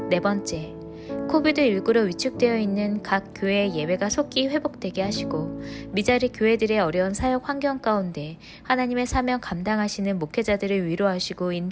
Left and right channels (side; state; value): both; identical; correlation 1.00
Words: 네 번째, 코비드19로 위축되어 있는 각 교회의 예배가 속히 회복되게 하시고 미자리 교회들의 어려운 사역 환경 가운데 하나님의 사명 감당하시는 목회자들을 위로하시고